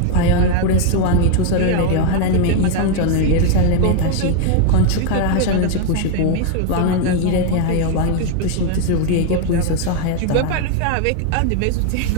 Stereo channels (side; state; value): both; different; correlation 0.00